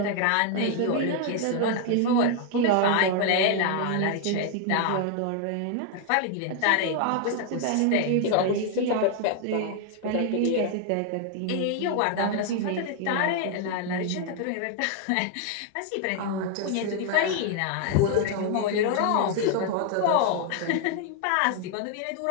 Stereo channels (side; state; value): both; different; correlation 0.00